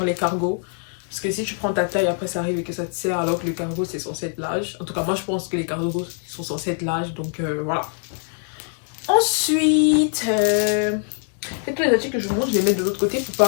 les cargos. Parce que si tu prends ta taille, après ça arrive et que ça te serre alors que le cargo c'est censé être large. En tout cas moi je pense que les cargos sont censés être larges. Donc voilà. Ensuite, tous les articles que je vous montre, je les mets de l'autre côté pour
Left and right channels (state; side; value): silent; right; 58 dB below the other